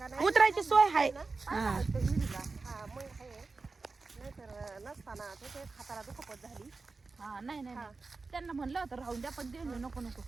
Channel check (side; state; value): left; quieter; 4.0 dB